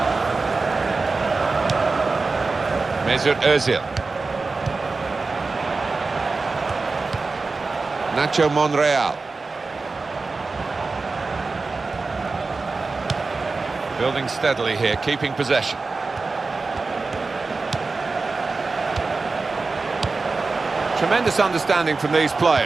Mesut Ozil. Nacho Monreal. Building steadily here, keeping possession. Tremendous understanding from these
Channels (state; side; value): quieter; left; 3.9 dB